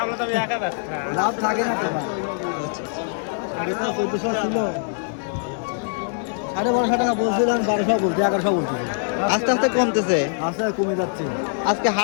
থাকে না তো ভাই। আগে তো 1400 ছিল। 1250 টাকা বলছিলাম, 1200 বলছি, 1100 বলছি। আস্তে আস্তে কমতেছে। আস্তে কমে যাচ্ছে। আজকে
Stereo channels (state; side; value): silent; right; digital silence